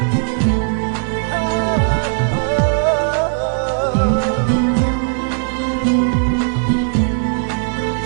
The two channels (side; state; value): left; silent; digital silence